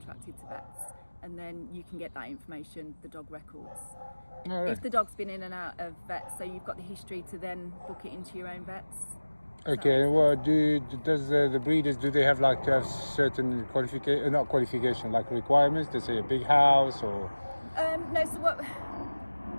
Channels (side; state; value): both; inverted; correlation -1.00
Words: to vets, and then you can get that information, the dog records. All right. If the dog's been in and out of vets, so you've got the history to then book it into your own vets. Okay, and what does the breeders, do they have like to have certain qualification, like requirements? They say a big house or? No, so what